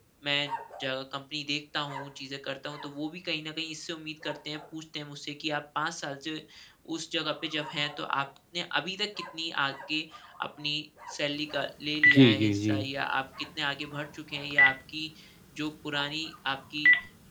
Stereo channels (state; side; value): identical; both; correlation 1.00